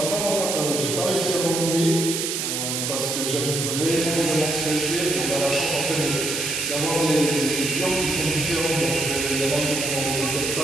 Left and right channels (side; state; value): right; noise; hiss, 2 dB below the sound